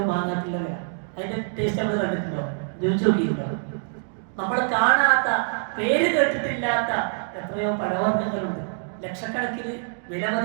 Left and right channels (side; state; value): left; silent; digital silence